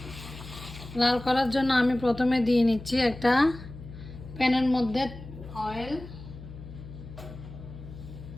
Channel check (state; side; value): noise; left; hum, 14 dB below the sound